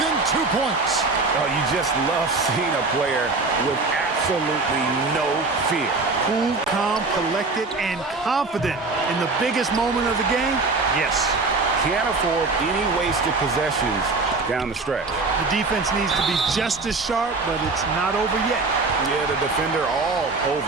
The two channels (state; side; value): quieter; left; 3.7 dB